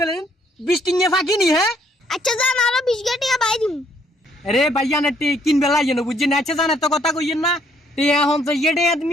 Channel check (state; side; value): normal; both; correlation 0.67